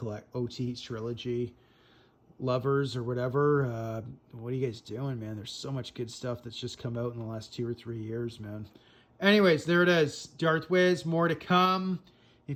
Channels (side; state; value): both; identical; correlation 1.00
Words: trilogy lovers or whatever. What are you guys doing, man? There's so much good stuff that's just come out in the last 2 or 3 years, man. Anyways, there it is. Darth Wiz, more to come.